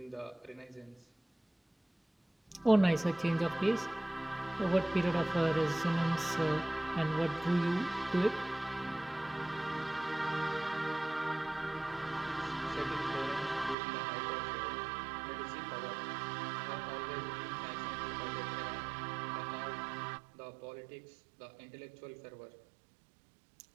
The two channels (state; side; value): drops out; left; at 13.8 s